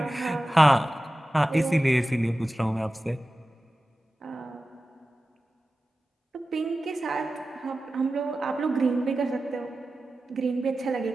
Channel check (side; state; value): both; normal; correlation 0.95